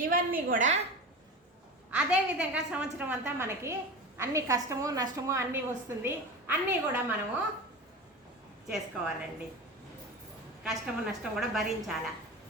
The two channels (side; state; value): both; normal; correlation 0.30